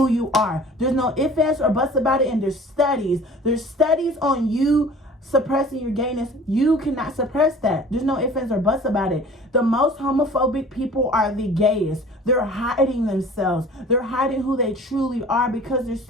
you are. There's no ifs, ands, or buts about it. And there's studies. There's studies on you suppressing your gayness. You cannot suppress that. There's no ifs, ands, or buts about it. The most homophobic people are the gayest. They're hiding themselves. They're hiding who they truly are because they're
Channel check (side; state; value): both; normal; correlation 0.46